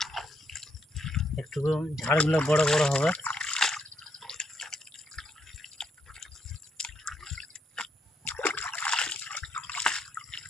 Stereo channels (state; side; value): normal; both; correlation 0.76